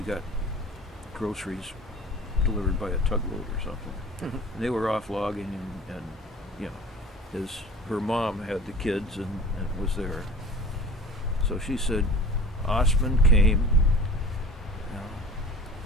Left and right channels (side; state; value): both; normal; correlation 0.42